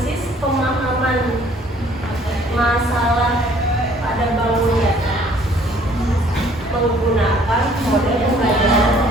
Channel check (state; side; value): normal; both; correlation 0.58